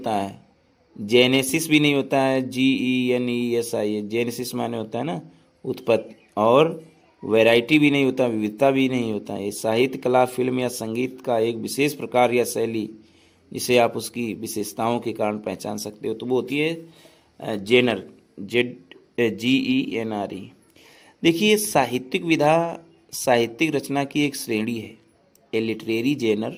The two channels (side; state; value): both; identical; correlation 1.00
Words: है, जेनेसिस भी नहीं होता है, GENESIS, जेनेसिस माने होता है ना उत्पत्ति, और वैरायटी भी नहीं होता, विविधता भी नहीं होता है। साहित्य कला फिल्म या संगीत का एक विशेष प्रकार या शैली जिसे आप उसकी विशेषताओं के कारण पहचान सकते हो, तो वो होती है जेनर, GENRE। देखिए, साहित्यिक विधा साहित्यिक रचना की एक श्रेणी है। A literary genre